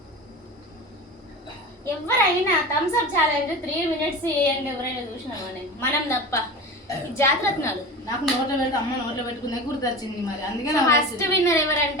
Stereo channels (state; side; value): normal; both; correlation 0.30